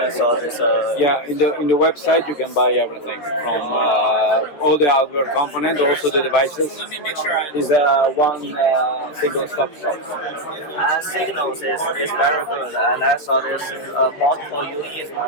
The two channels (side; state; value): right; late; 13 ms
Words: so it's Yeah, in the website you can buy everything from all the hardware components, also the devices. Is one single stop shop. Signals is very good, and I saw there's multiple units